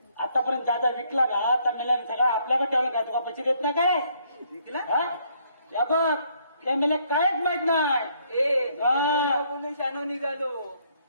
आतापर्यंत दादा विकला ना तर मेल्याने सगळं आपल्याकडे ठेवलं काय? तुला पैसे देत नाही काय? विकला या बघ. त्या मेल्या कायच माहित नाही. बोलून शानो निघालो.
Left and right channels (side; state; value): both; inverted; correlation -0.68